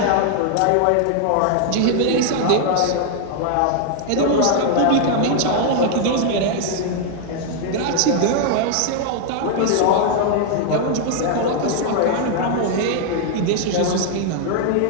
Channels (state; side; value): different; both; correlation 0.00